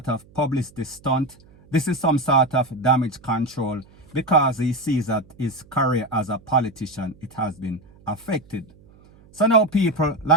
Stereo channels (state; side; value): noise; right; hum, 27 dB below the sound